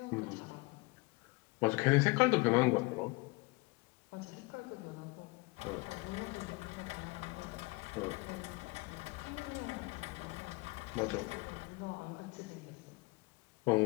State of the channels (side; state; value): right; quieter; 25.5 dB